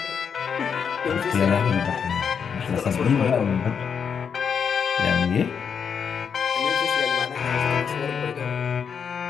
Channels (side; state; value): right; quieter; 6.9 dB